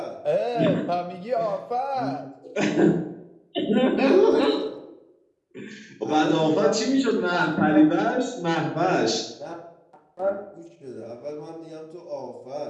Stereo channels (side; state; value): both; identical; correlation 1.00